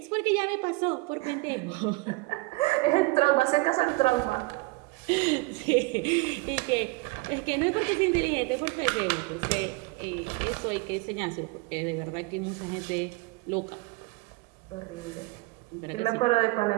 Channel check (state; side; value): quieter; left; 24.1 dB